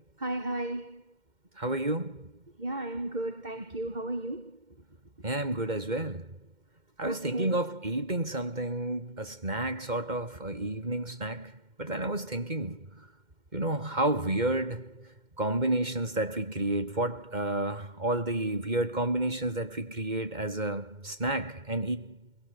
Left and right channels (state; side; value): late; left; 2.1 ms